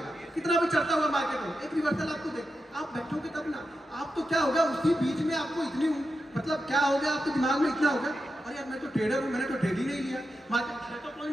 कितना भी चढ़ता हुआ मार्केट हो, एक रिवर्सल आपको देगा। आप बैठोगे तब ना, आप तो क्या होगा उसी बीच में आपको इतनी मतलब क्या हो गया आपके दिमाग में इतना होगा अरे यार मैं तो ट्रेडर हूँ, मैंने तो ट्रेड ही नहीं लिया, मार्केट तो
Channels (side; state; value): both; normal; correlation 0.88